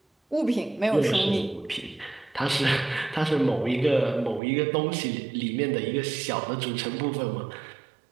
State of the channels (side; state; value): left; drops out; at 4.4 s